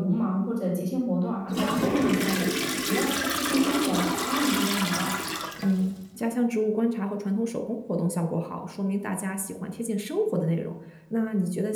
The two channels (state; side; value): identical; both; correlation 1.00